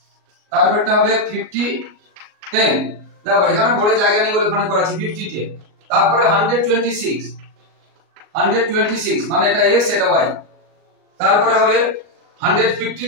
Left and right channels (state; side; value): late; left; 38 ms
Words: তারপরটা হবে 50 10, দেখো এখানে বড় জায়গা নেই বলে ওখানে করেছি 50 10, তারপরে 126 126 মানে এটা x এটা y, তারপরে হবে